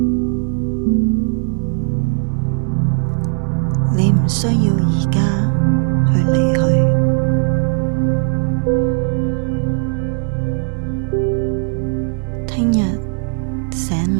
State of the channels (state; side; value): silent; left; 55 dB below the other